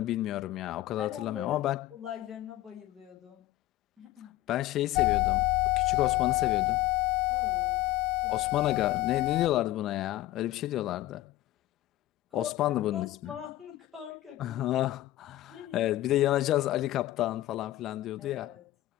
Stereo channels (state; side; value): quieter; right; 15.8 dB